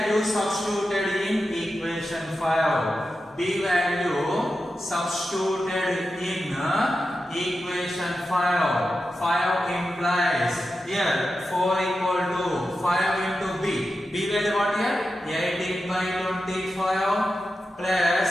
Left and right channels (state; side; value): normal; both; correlation 0.91